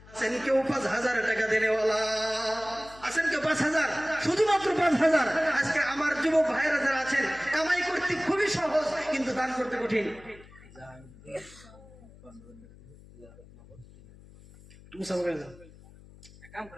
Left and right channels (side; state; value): left; noise; hum, 22 dB below the sound